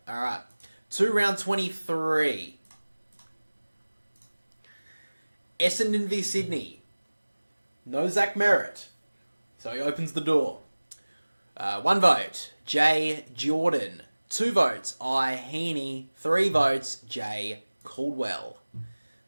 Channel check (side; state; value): both; inverted; correlation -1.00